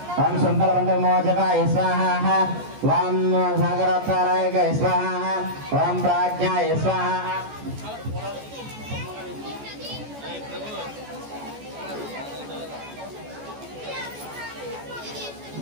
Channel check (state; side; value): late; left; 14 ms